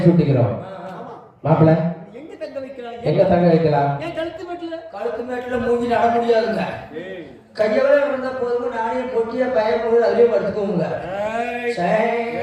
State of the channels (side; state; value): both; identical; correlation 1.00